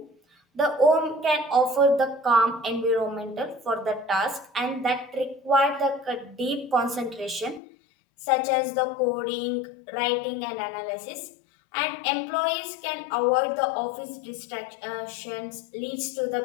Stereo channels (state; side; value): drops out; right; at 7.6 s